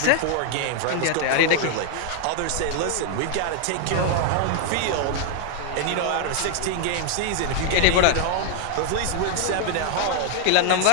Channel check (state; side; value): different; both; correlation 0.00